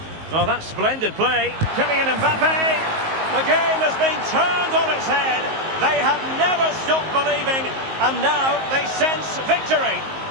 Oh, that's splendid play. Kylian Mbappe. The game has been turned on its head. They have never stopped believing, and now they sense victory.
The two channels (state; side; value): late; left; 19 ms